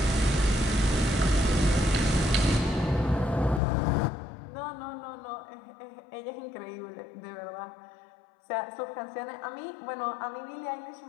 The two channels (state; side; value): drops out; right; at 3.6 s